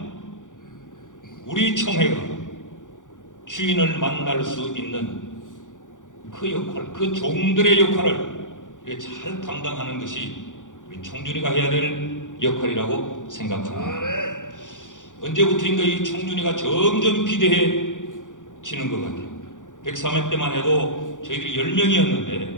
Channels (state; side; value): late; right; 0.87 ms